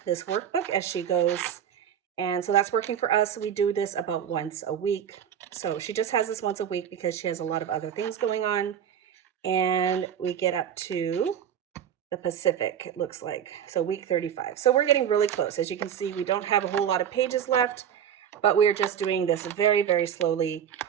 this workbook as she goes. And so that's working for us. We do this about once a week. So she just has this once a week because she has a lot of other things going on. And we get up to the Pacific, it looks like. So week 35. So we're getting really close. As you can see, we don't have a whole lot of pages left, but we're just doing this very, very slowly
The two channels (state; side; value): quieter; left; 9.0 dB